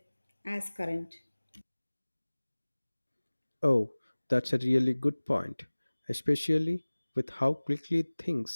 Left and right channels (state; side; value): inverted; both; correlation -1.00